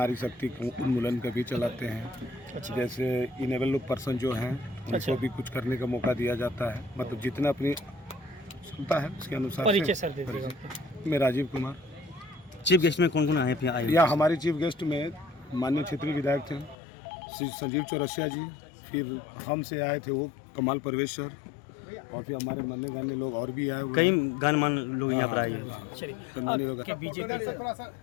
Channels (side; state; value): right; drops out; at 16.8 s